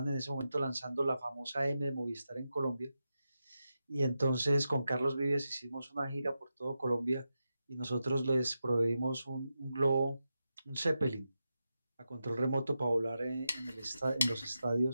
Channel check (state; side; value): inverted; both; correlation -0.89